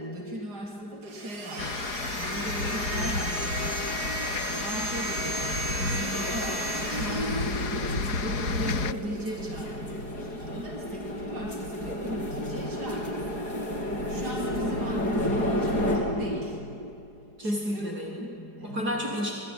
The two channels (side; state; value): left; late; 4.8 ms